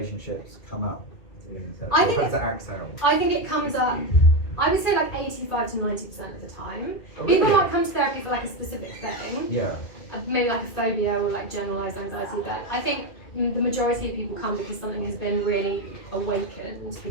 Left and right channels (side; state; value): right; late; 2.3 ms